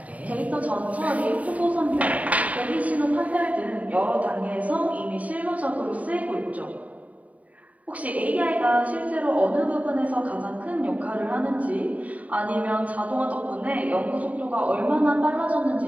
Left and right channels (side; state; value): left; late; 0.070 ms